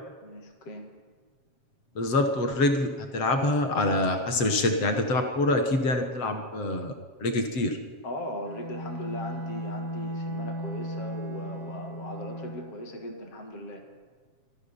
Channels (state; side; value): late; right; 7.4 ms